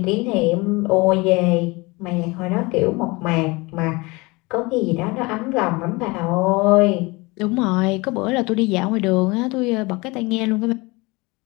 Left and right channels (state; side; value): quieter; right; 24.7 dB